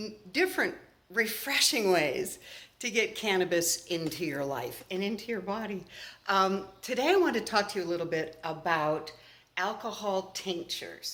different refreshing ways to get cannabis into your life and into your body. Today I want to talk to you a little bit about alcohol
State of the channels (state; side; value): identical; both; correlation 1.00